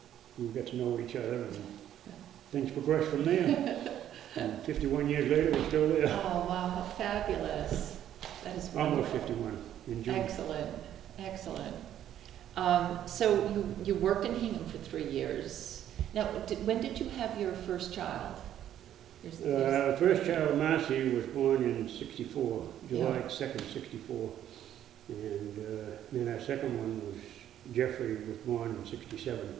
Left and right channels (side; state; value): left; quieter; 11.1 dB